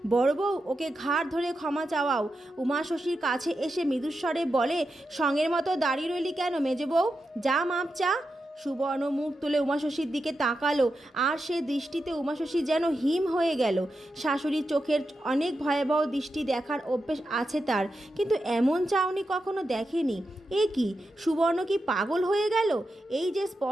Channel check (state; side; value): normal; both; correlation 0.88